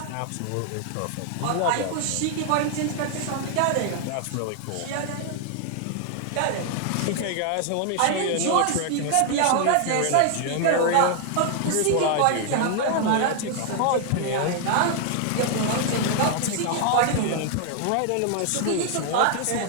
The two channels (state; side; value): different; both; correlation 0.00